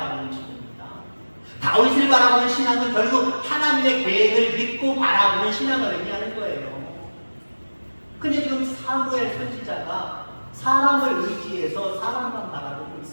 기도입니다. 다윗을 바라보는 신앙은 결국 하나님의 계획을 믿고 바라보는 신앙을 의미하는 거예요. 근데 지금 사무엘 선지자가 사람을 의지해서 사람만 바라보고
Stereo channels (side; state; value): both; inverted; correlation -1.00